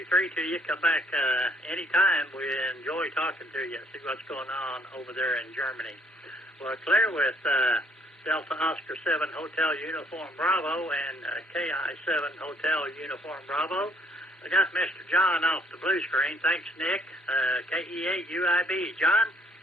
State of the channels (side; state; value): both; normal; correlation 0.64